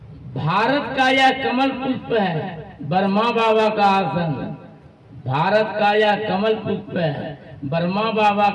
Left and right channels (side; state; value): both; identical; correlation 1.00